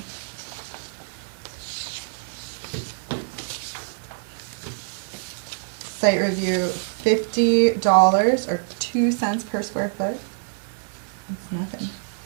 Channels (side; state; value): left; silent; digital silence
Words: Site review, $50 or 2 cents per square foot. That's nothing